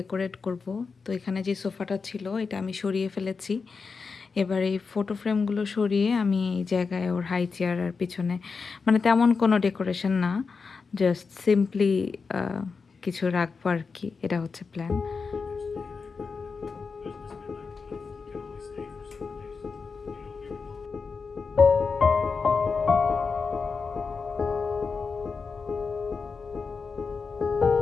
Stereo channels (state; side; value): quieter; right; 4.9 dB